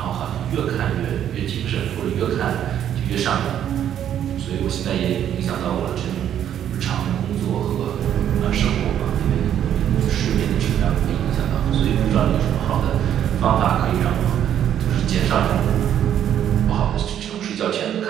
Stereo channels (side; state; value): left; quieter; 10.1 dB